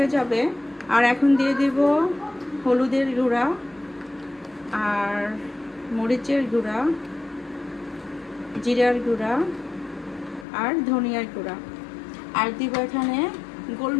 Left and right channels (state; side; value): drops out; right; at 10.5 s